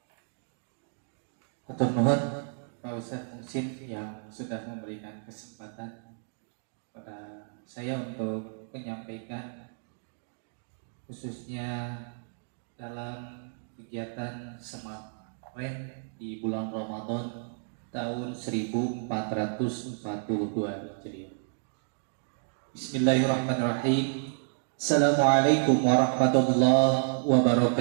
Hatur nuhun Pak Ustadz Muhsin yang sudah memberikan kesempatan pada saya untuk menyampaikan khususnya dalam kegiatan Semantren di bulan Ramadan tahun 1442 Hijriah. Bismillahirrahmanirrahim. Assalamualaikum warahmatullahi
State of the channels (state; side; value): silent; left; digital silence